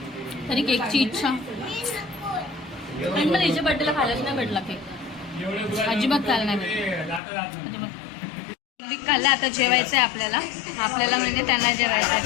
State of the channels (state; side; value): drops out; right; at 7.2 s